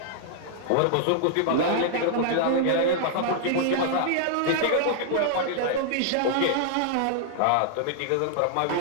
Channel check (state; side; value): different; both; correlation -0.01